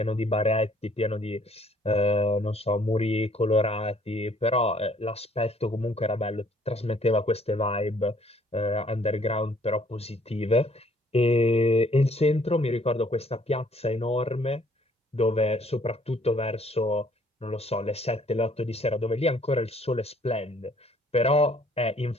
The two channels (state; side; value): normal; both; correlation 0.62